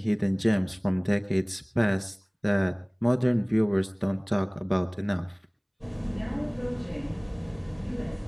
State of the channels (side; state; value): both; identical; correlation 1.00